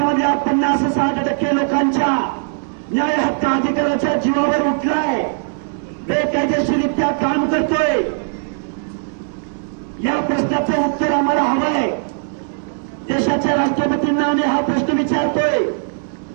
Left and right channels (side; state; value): left; silent; 67 dB below the other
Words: 50-60% लोकांच्या न्याय हक्क अधिकाराच्या जीवावर उठलाय, बेकायदेशीररित्या काम करतोय। या प्रश्नाचं उत्तर आम्हाला हवंय। देशाच्या राष्ट्रपतींना आम्ही हा प्रश्न विचारतोय,